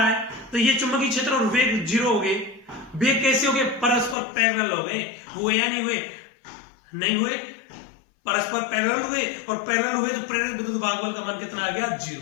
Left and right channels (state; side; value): drops out; right; at 4.2 s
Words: है, तो ये चुंबकीय क्षेत्र और वेग 0 हो गए। वेग कैसे हो गए, परस्पर पैरेलल हो गए, हुए या नहीं हुए, नहीं हुए, परस्पर पैरेलल हुए, और पैरेलल हुए तो प्रेरित विद्युत भागबल का मान कितना आ गया,